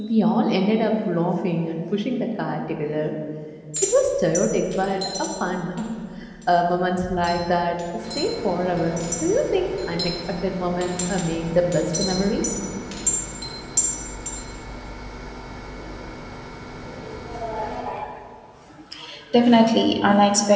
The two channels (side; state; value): both; identical; correlation 1.00